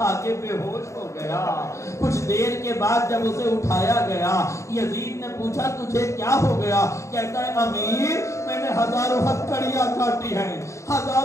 کے بے ہوش ہو گیا۔ کچھ دیر کے بعد جب اسے اٹھایا گیا، یزید نے پوچھا تجھے کیا ہو گیا؟ کہتا ہے امیر میں نے ہزاروں ہتھکڑیاں کاٹی ہیں،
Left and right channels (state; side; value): late; right; 0.14 ms